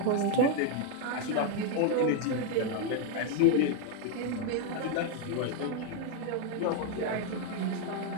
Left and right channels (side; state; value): both; different; correlation 0.01